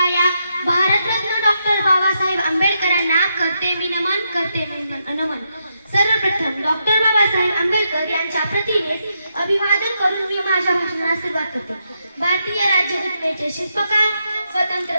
या भारतरत्न डॉक्टर बाबासाहेब आंबेडकरांना करते मी नमन, करते मी नमन. सर्वप्रथम डॉक्टर बाबासाहेब आंबेडकर यांच्या प्रतिमेस अभिवादन करून मी माझ्या भाषणाला सुरुवात करते. भारतीय राज्यघटनेचे शिल्पकार, स्वतंत्र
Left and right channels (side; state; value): both; inverted; correlation -0.81